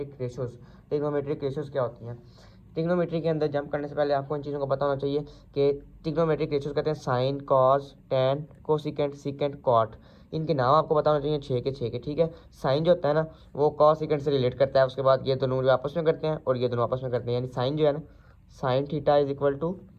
रेशियोज। ट्रिग्नोमेट्रिक रेशियोज क्या होती हैं? ट्रिग्नोमेट्री के अंदर जंप करने से पहले आपको इन चीज़ों का पता होना चाहिए कि ट्रिग्नोमेट्रिक रेशियोज कहते हैं sine, cos, tan, cosecant, secant, cot. इनके नाम आपको पता होना चाहिए छः के, ठीक है। साइन जो होता है ना, वो कॉस सीकेंट से रिलेट करता है। उसके बाद ये दोनों जो आपस में करते हैं और ये दोनों आपस में करते हैं, यानी साइन जो है ना, sine theta is equal to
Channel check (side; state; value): both; identical; correlation 1.00